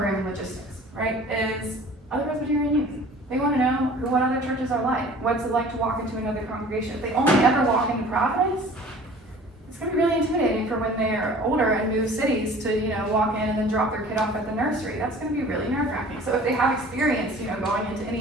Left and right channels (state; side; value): normal; both; correlation 0.46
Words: logistics, right? Is other Presbyterian youth. They want to know what other churches are like. What's it like to walk into another congregation? If they only ever walk into Providence, it's going to be really intimidating for when they're older and move cities to, walk in and then drop their kid off at the nursery. That's going to be really nerve-wracking. So if they have experience, going into